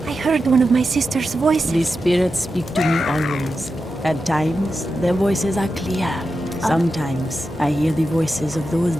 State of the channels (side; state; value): both; normal; correlation 0.90